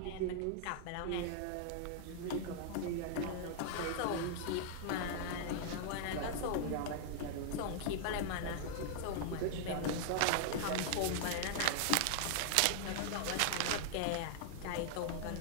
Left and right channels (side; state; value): both; different; correlation -0.01